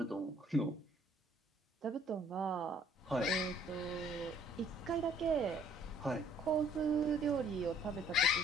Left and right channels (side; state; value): both; normal; correlation 0.60